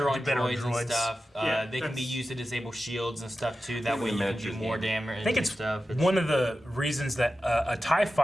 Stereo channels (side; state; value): both; normal; correlation 0.93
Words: on better droids and stuff. Yeah, they can be used to disable shields and stuff too. That way you can do more damage. I think it's one of the reasons that a TIE